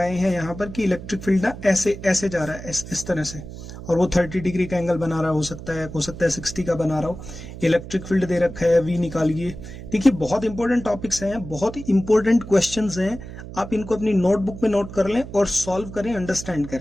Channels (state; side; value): noise; right; hum, 12 dB below the sound